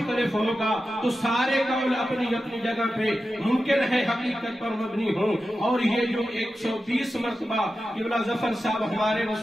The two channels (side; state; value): both; normal; correlation 0.92